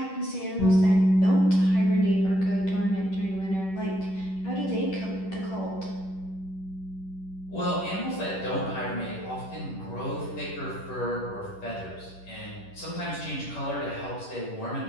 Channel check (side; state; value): right; late; 10 ms